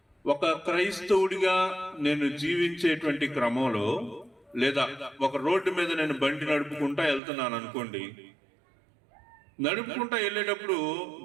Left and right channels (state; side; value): drops out; left; at 7.2 s